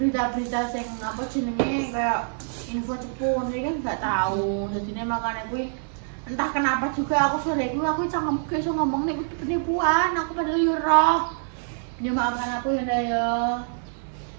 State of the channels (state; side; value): silent; left; 61 dB below the other